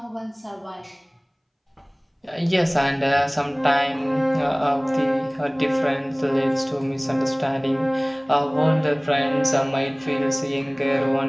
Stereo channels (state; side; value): identical; both; correlation 1.00